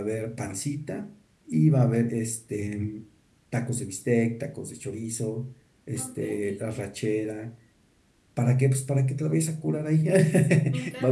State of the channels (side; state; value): both; identical; correlation 1.00